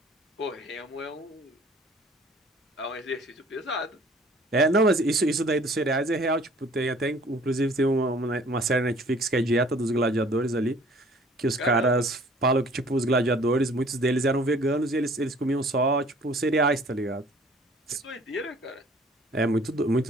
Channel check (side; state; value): both; normal; correlation 0.53